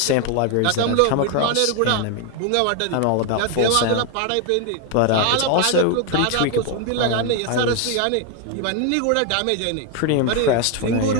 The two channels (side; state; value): both; different; correlation 0.01